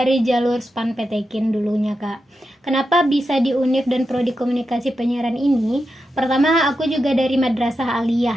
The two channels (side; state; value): both; normal; correlation 0.88